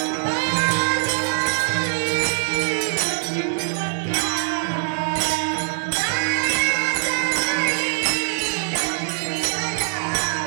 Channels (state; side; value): silent; left; 64 dB below the other